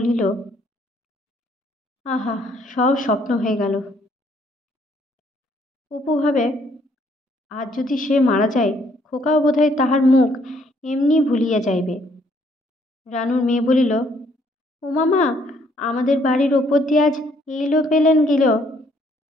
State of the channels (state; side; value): normal; both; correlation 0.67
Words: আহা, সব স্বপ্ন হয়ে গেল। অপু ভাবে, আজ যদি সে মারা যায়, খোকাও বোধহয় তাহার মুখ এমনি ভুলিয়া যাইবে। রানুর মেয়ে বলিল, ও মামা, আমাদের বাড়ির ওপর দিয়ে আজ এইলো পেলেন গেল?